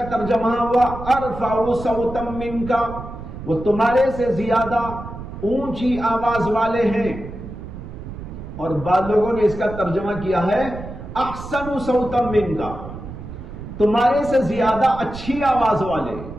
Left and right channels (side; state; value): right; noise; rumble, 11 dB below the sound